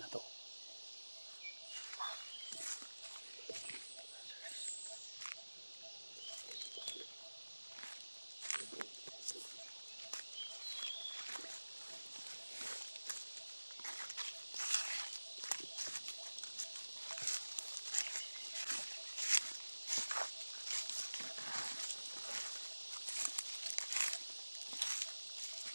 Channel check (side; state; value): both; inverted; correlation -1.00